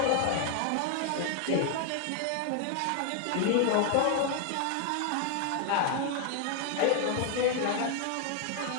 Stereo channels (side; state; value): both; different; correlation 0.00